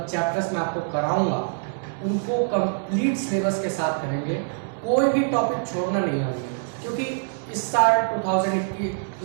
मैं आपको कराऊंगा उनको कंप्लीट सिलेबस के साथ करेंगे, कोई भी टॉपिक छोड़ना नहीं है क्योंकि इस साल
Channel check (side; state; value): left; silent; digital silence